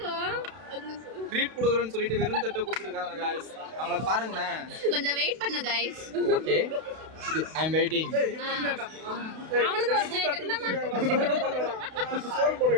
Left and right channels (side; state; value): left; late; 32 ms